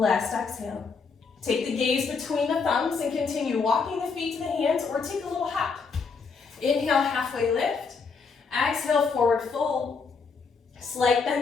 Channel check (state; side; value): quieter; right; 5.0 dB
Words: exhale. Take the gaze between the thumbs and continue walking the feet to the hands or take a little hop. Inhale, halfway lift. Exhale, forward fold. Slight